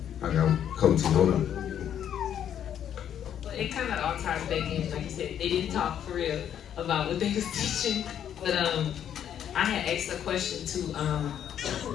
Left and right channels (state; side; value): quieter; right; 9.6 dB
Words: I got coach, hold on. Well, it kind of all ties back in, like you said, they didn't talk for real about what they was teaching, but I had asked a question to